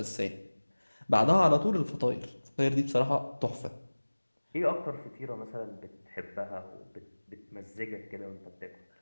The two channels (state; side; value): inverted; both; correlation -1.00